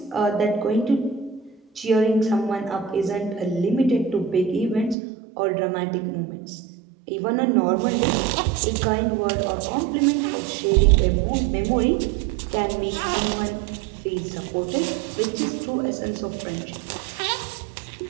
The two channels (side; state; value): left; drops out; at 5.0 s